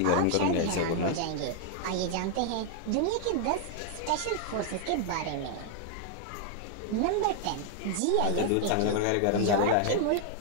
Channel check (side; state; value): both; different; correlation 0.00